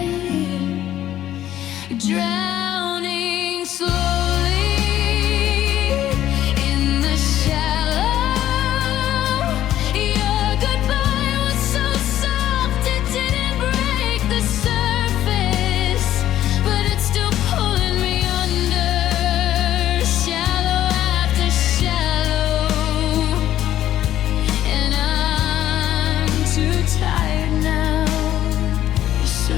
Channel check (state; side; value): quieter; right; 12.4 dB